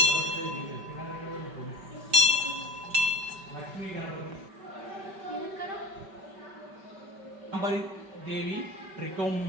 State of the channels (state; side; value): late; left; 5.2 ms